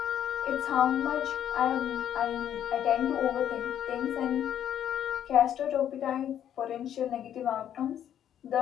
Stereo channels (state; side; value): quieter; right; 10.2 dB